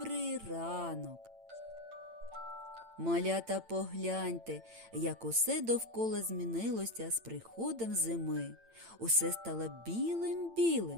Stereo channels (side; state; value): left; late; 8.9 ms